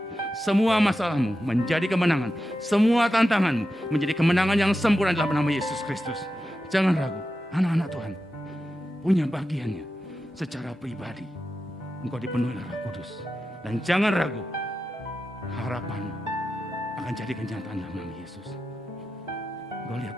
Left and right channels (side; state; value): both; normal; correlation 0.90